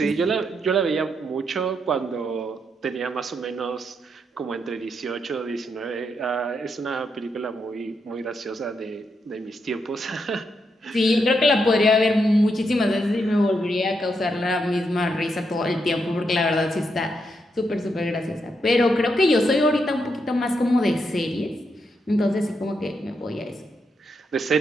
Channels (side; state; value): both; normal; correlation 0.81